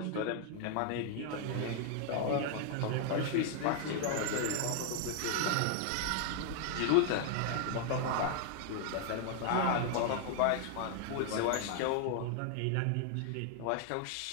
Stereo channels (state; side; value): different; both; correlation 0.00